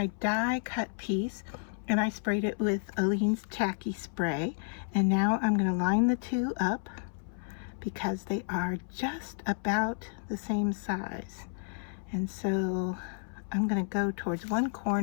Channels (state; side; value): silent; right; 57 dB below the other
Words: die cut piece and I sprayed it with Aleene's Tacky Spray. And now I'm going to line the two up because they are just about the same size. And so I'm going to go towards one